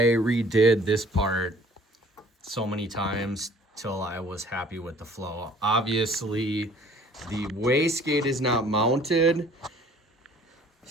redid this part so many times till I was happy with the flow. Obviously, the wastegate is not mounted.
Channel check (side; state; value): both; normal; correlation 0.54